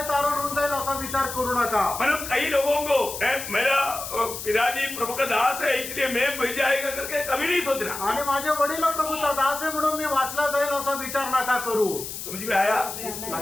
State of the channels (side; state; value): left; noise; hiss, 8 dB below the sound